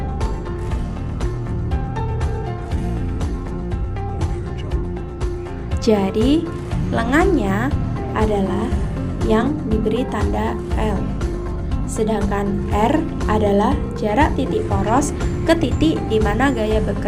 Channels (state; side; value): identical; both; correlation 1.00